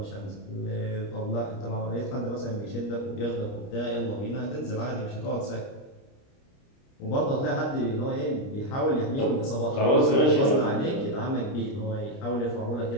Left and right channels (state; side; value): late; right; 29 ms